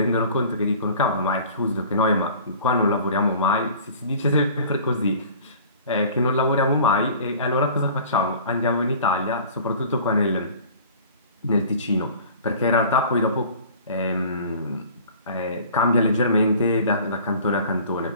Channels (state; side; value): inverted; both; correlation -0.46